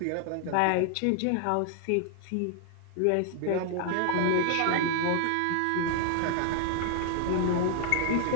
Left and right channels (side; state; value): both; different; correlation 0.00